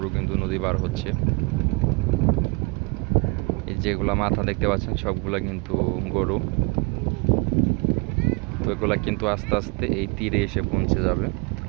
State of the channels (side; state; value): left; quieter; 30.0 dB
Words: কিন্তু নদী পার হচ্ছে। এই যেগুলা মাথা দেখতে পাচ্ছেন সবগুলা কিন্তু গরু। তো এগুলা কিন্তু আস্তে আস্তে এই তীরে এসে পৌঁছে যাবে।